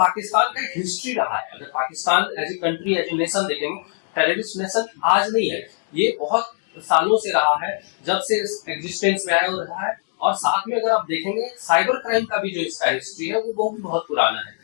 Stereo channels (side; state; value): right; silent; digital silence